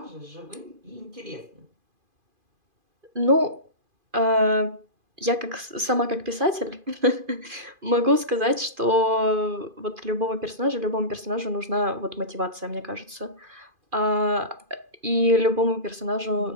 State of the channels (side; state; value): left; late; 2.5 ms